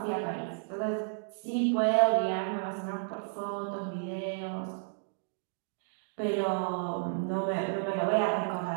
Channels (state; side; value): silent; left; digital silence